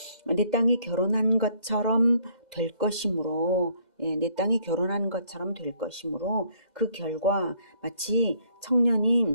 내 땅이 결혼한 것처럼 될 것이므로, 내 땅이 결혼한 것처럼 될 것이므로 그 결과 마치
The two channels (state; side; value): late; left; 2.0 ms